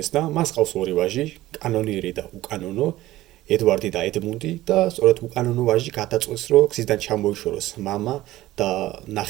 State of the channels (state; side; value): quieter; left; 16.1 dB